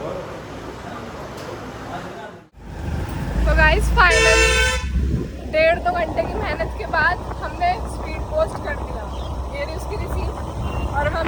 तो गाइस फाइनली 1.5-2 घंटे की मेहनत के बाद हमने स्पीड पोस्ट कर दिया, ये रही उसकी रिसीप्ट। और हम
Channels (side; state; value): both; identical; correlation 1.00